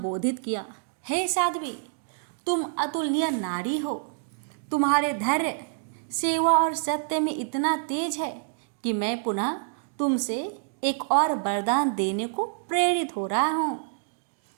किया, हे साध्वी, तुम अतुलनीय नारी हो। तुम्हारे धैर्य, सेवा और सत्य में इतना तेज है कि मैं पुनः तुमसे एक और वरदान देने को प्रेरित हो रहा हूँ।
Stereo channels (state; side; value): silent; left; digital silence